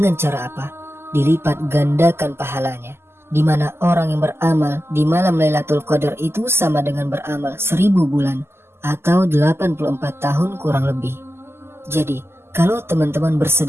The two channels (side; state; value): left; late; 0.12 ms